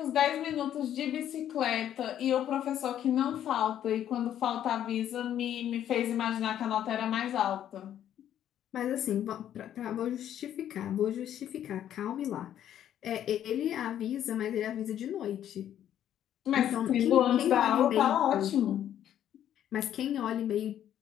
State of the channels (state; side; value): quieter; right; 10.7 dB